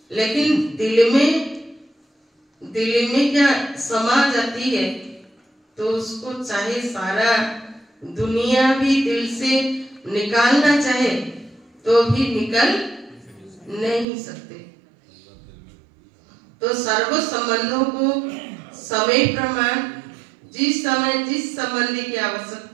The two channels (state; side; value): drops out; left; at 14.1 s